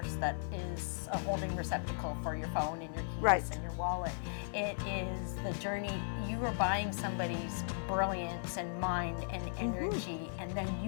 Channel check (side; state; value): right; silent; digital silence